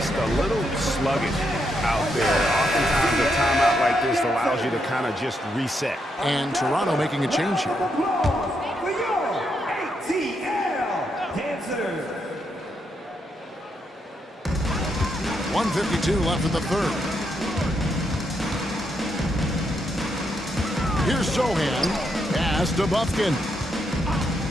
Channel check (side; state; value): both; normal; correlation 0.80